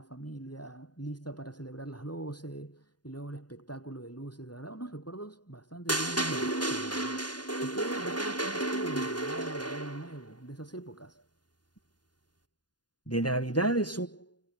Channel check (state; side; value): late; right; 0.70 ms